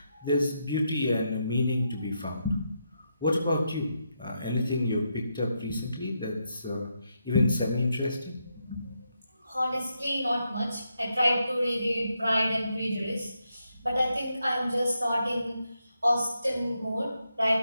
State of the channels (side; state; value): both; inverted; correlation -0.82